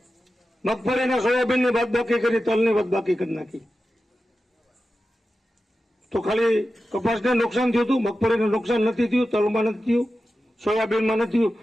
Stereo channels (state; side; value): normal; both; correlation 0.93